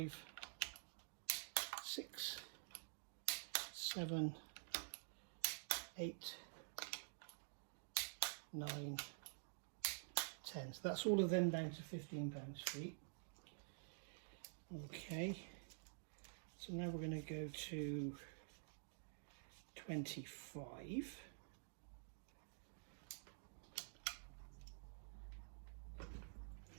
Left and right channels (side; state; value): left; silent; digital silence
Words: 6, 7, 8, 9, 10. So that's all of them down to 15 pounds-feet. Okay, so now we're going to go to 25.